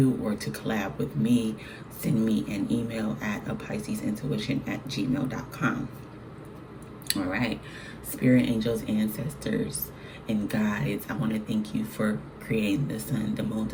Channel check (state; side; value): identical; both; correlation 1.00